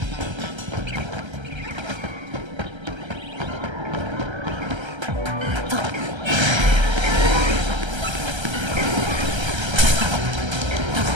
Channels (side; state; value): left; late; 1.3 ms